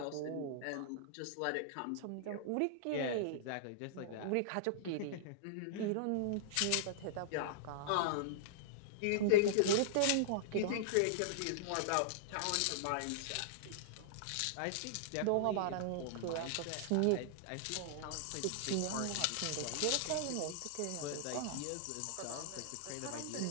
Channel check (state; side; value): different; both; correlation -0.02